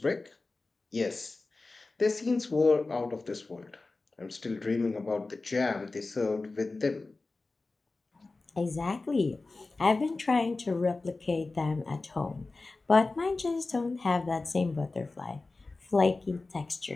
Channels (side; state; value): right; quieter; 3.5 dB